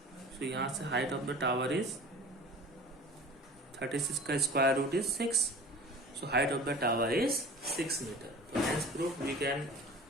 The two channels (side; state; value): both; normal; correlation 0.41